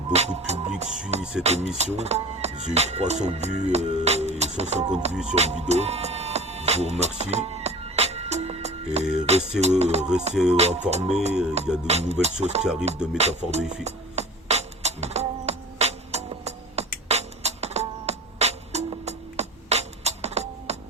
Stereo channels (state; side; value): normal; both; correlation 0.38